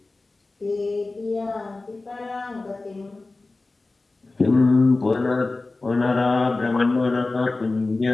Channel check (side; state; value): right; quieter; 3.3 dB